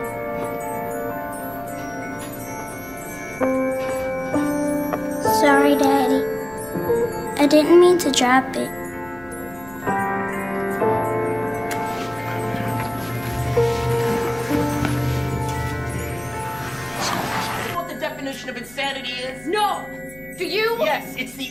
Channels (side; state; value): right; noise; hum, 22 dB below the sound